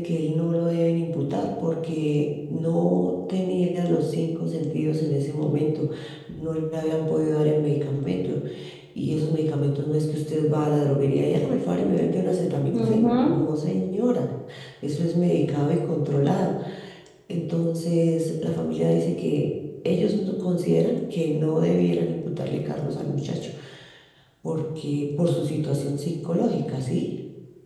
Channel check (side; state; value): both; identical; correlation 1.00